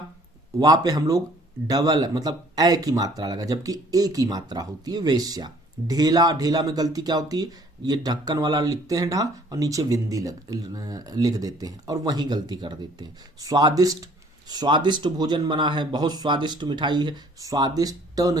वा पे हम लोग डबल मतलब ए की मात्रा लगा, जबकि ए की मात्रा होती है वेश्या। ढेला, ढेला में गलती क्या होती है, ये ढक्कन वाला लिखते हैं ढा और नीचे बिंदी लिख देते हैं और वहीं गलती कर देते हैं। स्वादिष्ट, स्वादिष्ट भोजन बना है, बहुत स्वादिष्ट मिठाई है, स्वादिष्ट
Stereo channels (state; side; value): normal; both; correlation 0.57